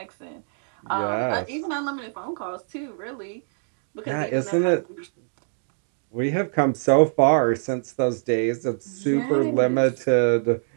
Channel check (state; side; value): silent; left; digital silence